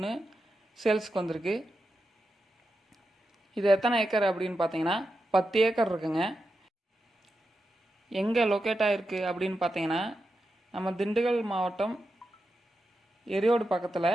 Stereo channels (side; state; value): both; normal; correlation 0.89